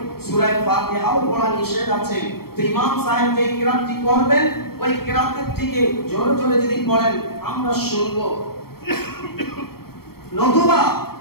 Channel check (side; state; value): right; late; 0.95 ms